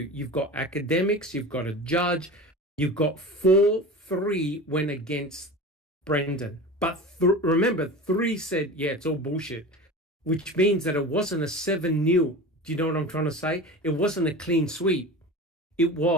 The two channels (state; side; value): normal; both; correlation 0.32